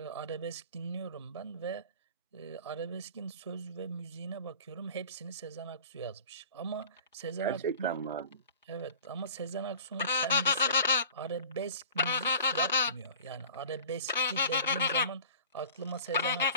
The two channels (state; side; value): inverted; both; correlation -0.43